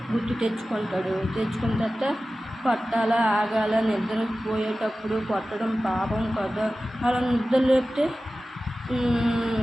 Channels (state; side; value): normal; both; correlation 0.95